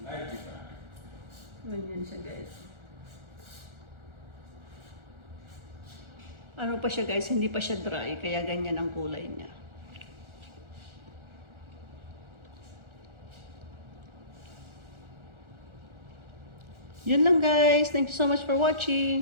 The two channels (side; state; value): left; late; 1.4 ms